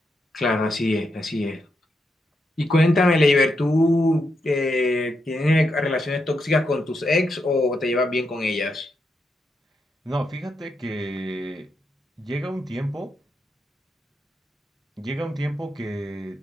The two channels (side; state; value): both; normal; correlation 0.83